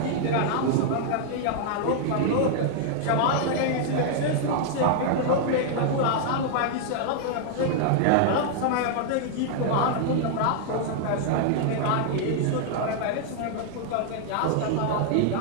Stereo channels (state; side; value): different; both; correlation 0.00